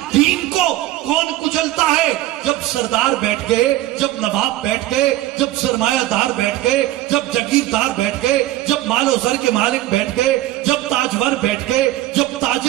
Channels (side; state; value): left; quieter; 15.5 dB